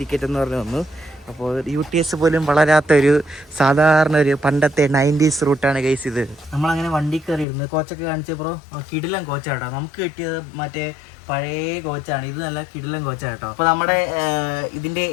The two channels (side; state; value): right; drops out; at 7.5 s